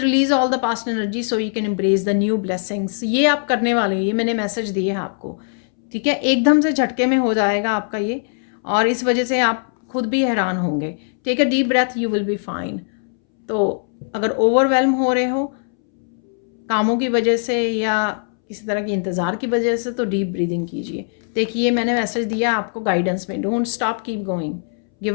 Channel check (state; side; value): silent; right; 64 dB below the other